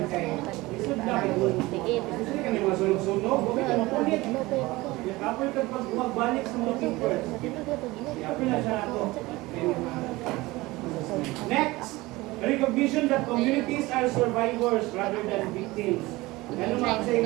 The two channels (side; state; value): left; quieter; 20.5 dB